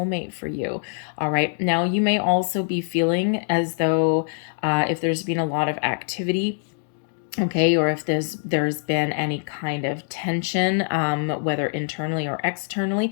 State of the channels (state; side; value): silent; right; digital silence